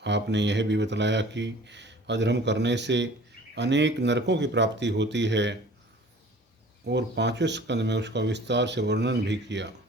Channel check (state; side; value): normal; both; correlation 0.47